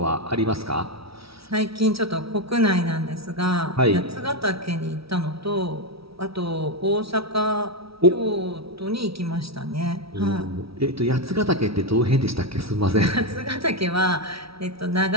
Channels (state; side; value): late; left; 0.76 ms